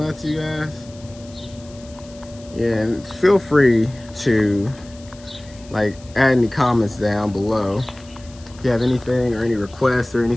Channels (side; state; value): left; noise; hiss, 23 dB below the sound